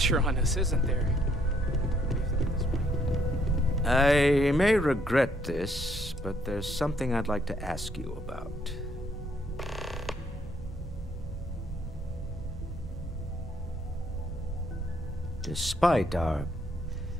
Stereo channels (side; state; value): both; normal; correlation 0.69